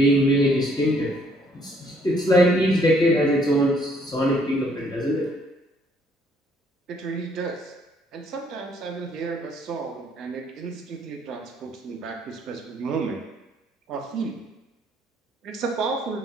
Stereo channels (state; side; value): normal; both; correlation 0.65